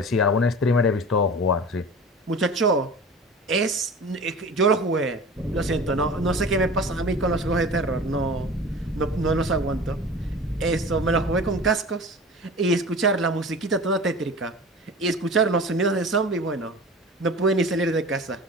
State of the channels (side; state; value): both; normal; correlation 0.37